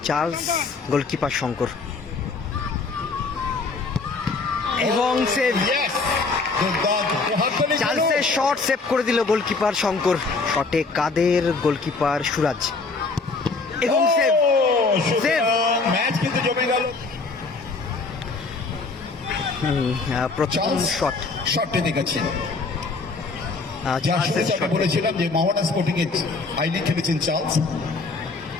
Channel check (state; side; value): quieter; right; 4.0 dB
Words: চার্লস, গোলকিপার শঙ্কর এবং সেভ। চার্লসের শট সেভ করে দিল গোলকিপার শঙ্কর। শটে কাদের, গোলকিপার সুরাজ এবং সেভ। সেভ। প্রথম শটটি দেখেছেন। বলেছিলাম যে মোহামেডান স্পোর্টিং এ আইলি খেলেছেন চার্লস,